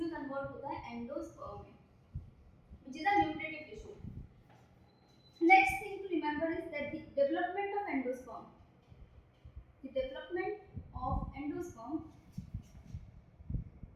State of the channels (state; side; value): identical; both; correlation 1.00